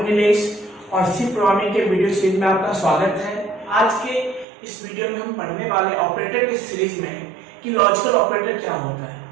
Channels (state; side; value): drops out; left; at 4.5 s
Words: नीलेश और सी प्रोग्रामिंग के वीडियो सीरीज में आपका स्वागत है। आज के इस वीडियो में हम पढ़ने वाले ऑपरेटर के सीरीज में कि लॉजिकल ऑपरेटर क्या होता